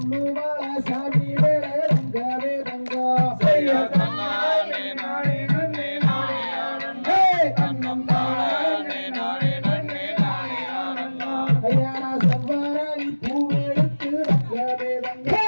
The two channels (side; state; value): both; inverted; correlation -1.00